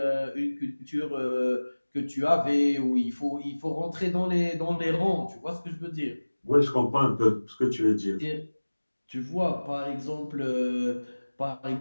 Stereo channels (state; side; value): inverted; both; correlation -1.00